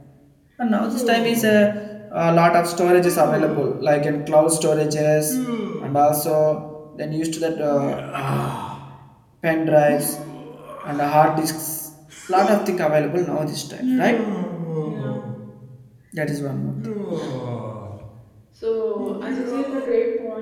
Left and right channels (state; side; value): identical; both; correlation 1.00